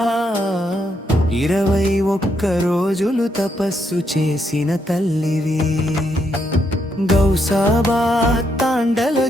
21 రోజులు తపస్సు చేసిన తల్లివి గౌసాబాద్ తాండల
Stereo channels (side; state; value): both; normal; correlation 0.77